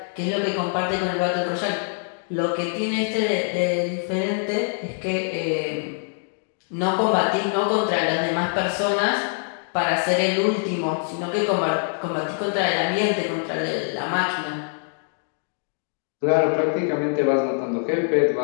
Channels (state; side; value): silent; right; 63 dB below the other